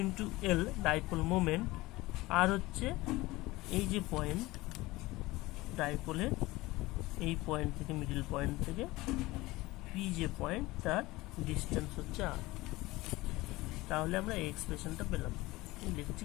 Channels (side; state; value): right; quieter; 20.0 dB